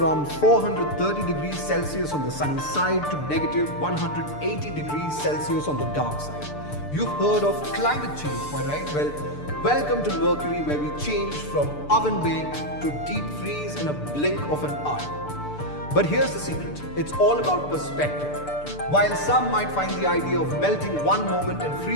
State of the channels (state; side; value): late; right; 6.8 ms